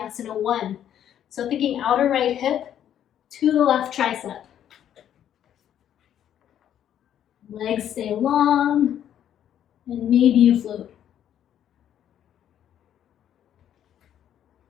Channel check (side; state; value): right; quieter; 10.3 dB